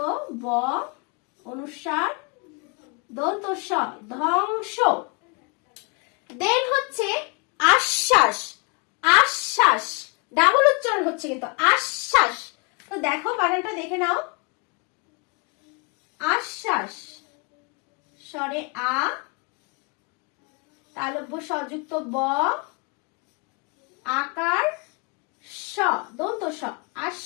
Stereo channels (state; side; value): quieter; right; 32.8 dB